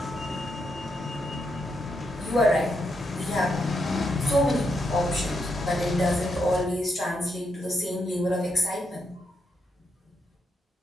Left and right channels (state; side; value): normal; both; correlation 0.81